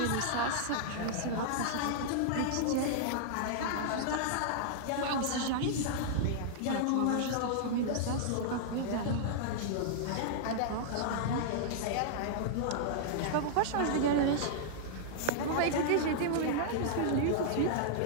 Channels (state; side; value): different; both; correlation -0.01